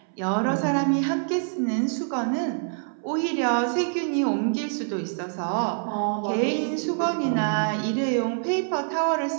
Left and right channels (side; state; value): left; silent; 61 dB below the other